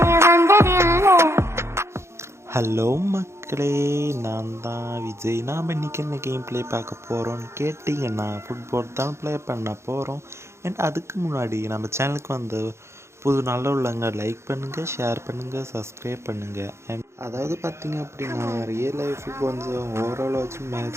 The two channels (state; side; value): late; left; 0.13 ms